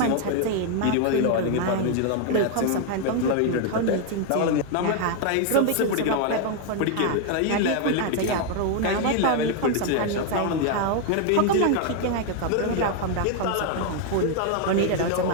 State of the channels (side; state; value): both; different; correlation 0.00